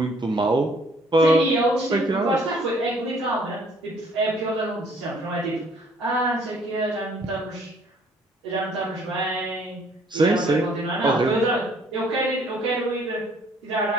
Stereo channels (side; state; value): both; normal; correlation 0.61